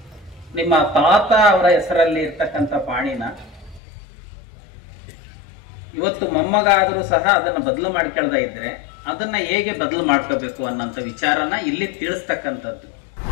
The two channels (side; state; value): right; drops out; at 3.8 s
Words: ನಿಮ್ಮ ತಾತ ಅವರ ಹೆಸರಲ್ಲಿ ಇರ್ತಕ್ಕಂಥ ಪಾಣಿನ ಇವತ್ತು ಮೊಮ್ಮಗ ಆದರೂ ಸಹ ಅದನ್ನ ಬದಲು ಮಾಡ್ಕೊಳ್ತಾ ಇದ್ರೆ ಅದನ್ನ ಹೇಗೆ ಬದಲು ಮಾಡ್ಕೋಬೇಕು ಅನ್ನೋಂಥ ವಿಚಾರನ ಇಲ್ಲಿ ತಿಳಿಸ್ತಕ್ಕಂಥದ್ದು.